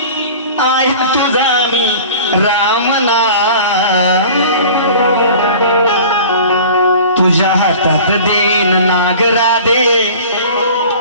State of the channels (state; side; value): inverted; both; correlation -0.42